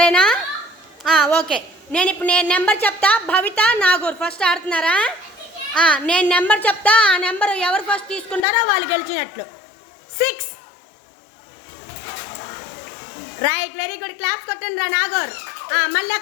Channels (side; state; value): right; drops out; at 8.5 s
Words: ఓకే. నేను నెంబర్ చెప్తా. భవిత, నాగూర్ ఫస్ట్ ఆడుతున్నారా? నేను నెంబర్ చెప్తా. ఆ నెంబర్ ఎవరు ఫస్ట్ తీసుకుంటారో వాళ్ళు గెలిచినట్లు. 6. Right, very good. క్లాప్స్ కొట్టండి రా నాగూర్. మళ్ళీ